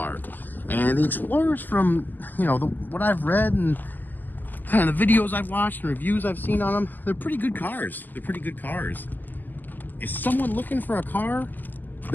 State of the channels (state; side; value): late; right; 0.087 ms